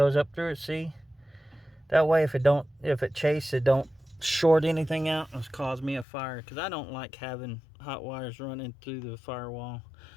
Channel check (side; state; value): right; drops out; at 6.1 s